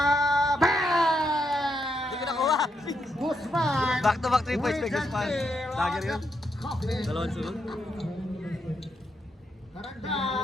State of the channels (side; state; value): both; normal; correlation 0.80